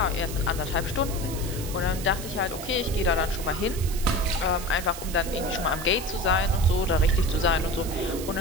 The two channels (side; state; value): right; noise; hiss, 11 dB below the sound